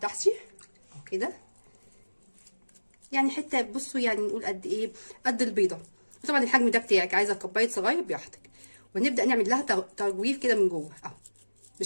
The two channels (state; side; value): inverted; both; correlation -1.00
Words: اهو كده، يعني حته بصوا يعني نقول قد ايه، قد البيضه، وطبعا الحجم ده بتاعك، عايزه كوبايه صغير براحتك. ونبدا نعمل لها تجويف كده من جوه اهو